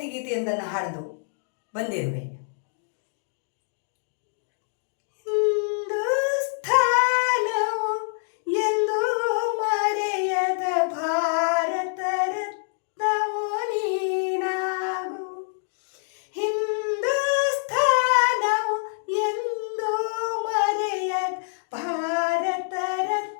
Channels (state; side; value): silent; right; digital silence